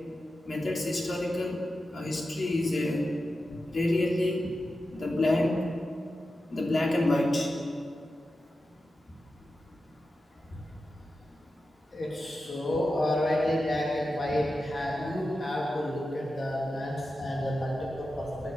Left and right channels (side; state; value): both; normal; correlation 0.91